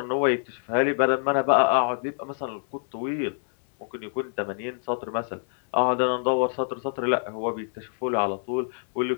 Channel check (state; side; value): silent; right; 60 dB below the other